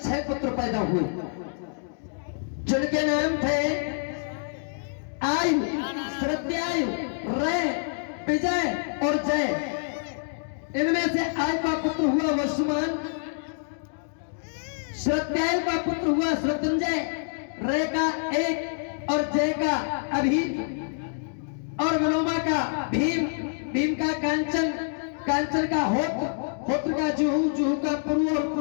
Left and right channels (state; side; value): silent; right; digital silence